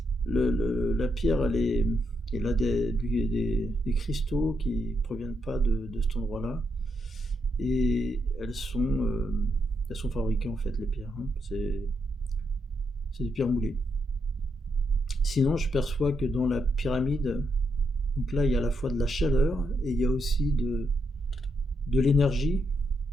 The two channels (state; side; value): normal; both; correlation 0.80